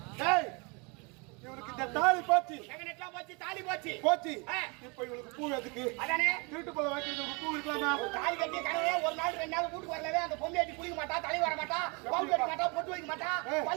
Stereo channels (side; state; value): left; quieter; 30.6 dB